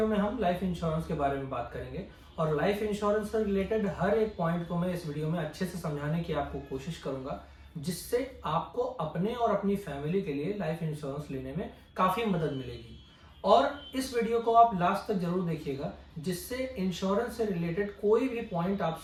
में हम लाइफ इंश्योरेंस के बारे में बात करेंगे, और लाइफ इंश्योरेंस से रिलेटेड हर एक पॉइंट को मैं इस वीडियो में अच्छे से समझाने की आपको कोशिश करूंगा, जिससे आपको अपने और अपनी फैमिली के लिए लाइफ इंश्योरेंस लेने में काफी मदद मिलेगी। और इस वीडियो को आप लास्ट तक जरूर देखिएगा, जिससे इंश्योरेंस से रिलेटेड कोई भी पॉइंट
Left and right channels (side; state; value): both; identical; correlation 1.00